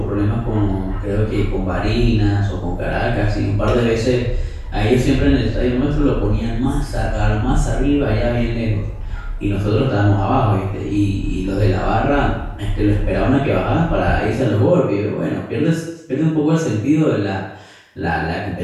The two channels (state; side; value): identical; both; correlation 1.00